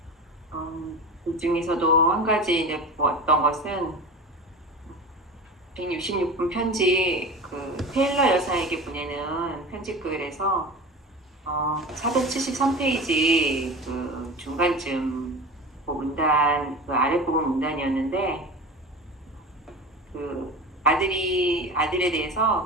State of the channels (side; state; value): both; normal; correlation 0.31